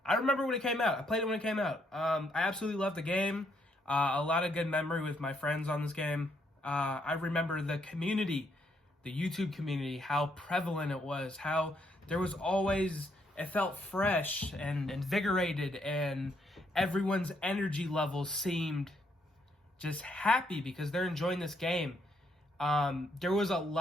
I remember when it came out. I played it when it came out. I absolutely loved the game. A lot of good memory with my friends on this game. I remember the community, the YouTube community, how prevalent it was, how there was always... It felt fresh and invigorated, and everyone's energy levels seemed just happy because they're enjoying this game. There was a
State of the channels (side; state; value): both; normal; correlation 0.73